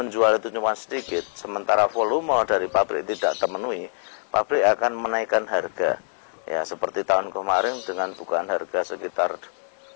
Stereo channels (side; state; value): right; silent; digital silence